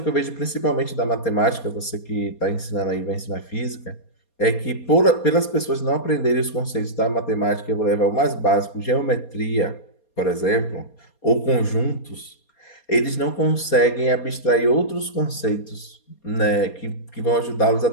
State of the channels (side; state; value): right; late; 4.2 ms